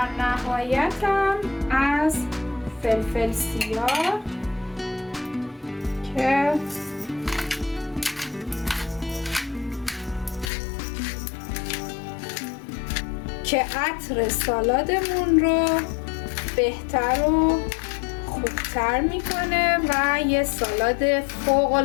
نهایتم از فلفل سیاه که عطر سالادمون رو بهتر و خوبتر میکنه و یه سالاد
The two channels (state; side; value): drops out; right; at 10.5 s